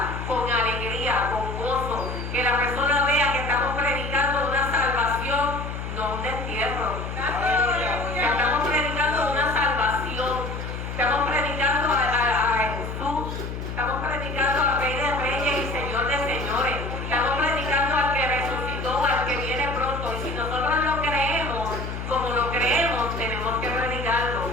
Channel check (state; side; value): noise; left; hum, 6 dB below the sound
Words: con alegría, con gozo, que la persona vea que estamos predicando una salvación, no un destierro. Que estamos predicando una salvación, estamos predicando a Jesús, estamos predicando al Rey de Reyes y Señor de Señores, estamos predicando al que resucitó, al que viene pronto, y si nosotros lo creemos, como lo creemos, tenemos que predicarlo.